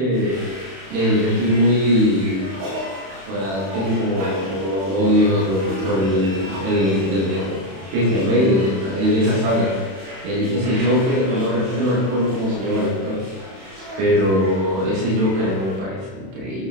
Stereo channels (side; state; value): left; late; 31 ms